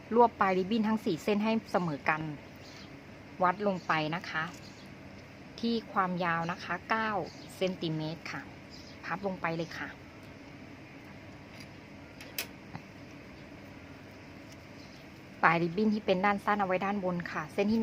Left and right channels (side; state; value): both; identical; correlation 1.00